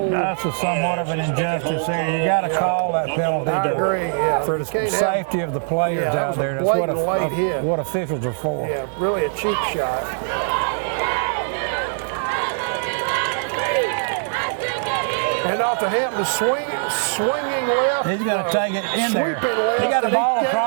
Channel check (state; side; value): silent; left; digital silence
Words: That's somewhat of an injustice there. You got to call that penalty. I agree. Yeah. For the safety of the players out there. That's what officials are for. Yeah, really a cheap shot. And off to Hampton, swinging left. He's going to take it in there. Left, he got the ball